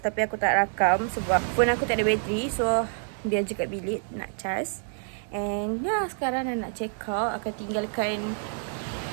tapi aku tak rakam sebab phone aku tak ada bateri. So biar je kat bilik nak charge. And ya, sekarang dah nak check out. Akan tinggalkan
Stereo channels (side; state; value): left; silent; digital silence